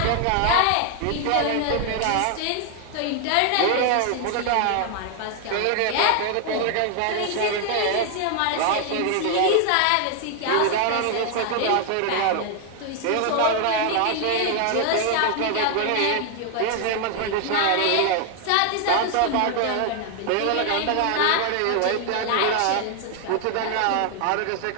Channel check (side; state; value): both; different; correlation 0.00